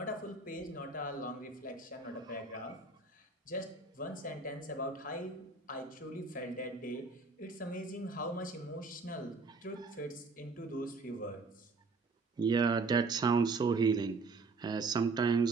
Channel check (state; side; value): quieter; left; 3.9 dB